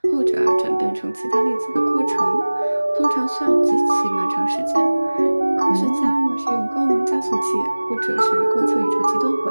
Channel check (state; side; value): inverted; both; correlation -1.00